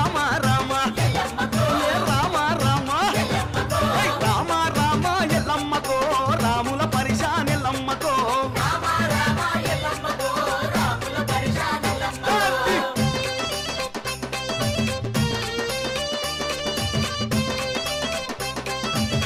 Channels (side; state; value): both; identical; correlation 1.00